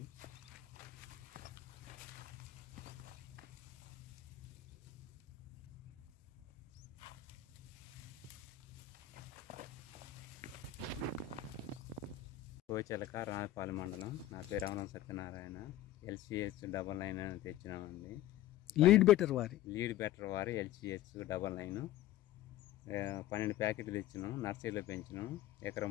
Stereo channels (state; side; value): quieter; right; 13.0 dB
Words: కోచెలక రాయపాలెం మండలం. నా పేరు రమణ సత్యనారాయణ. LCH99 తెచ్చినామండి. లీడ్ బెటర్ వారి LCH99 12 ప్యాకెట్లు తెచ్చినాం. నర్సరీలో పెంచినాం. ఎకరం